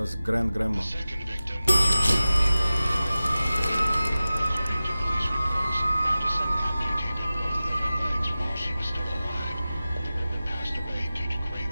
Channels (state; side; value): inverted; both; correlation -0.96